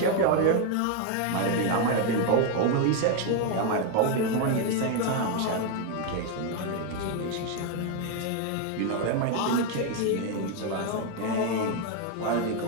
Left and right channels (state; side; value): different; both; correlation 0.01